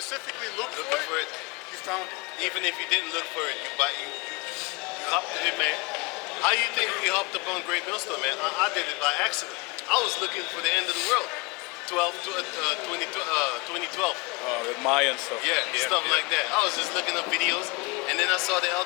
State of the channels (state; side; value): quieter; right; 27.1 dB